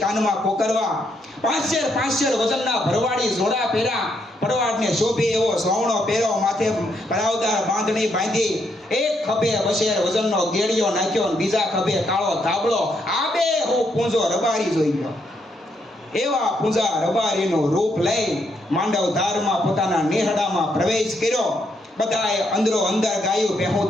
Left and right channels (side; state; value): both; normal; correlation 0.76